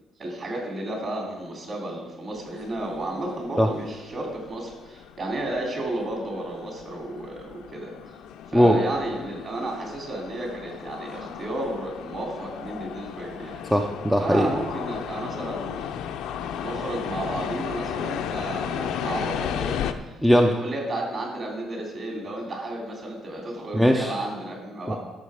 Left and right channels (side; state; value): both; normal; correlation 0.83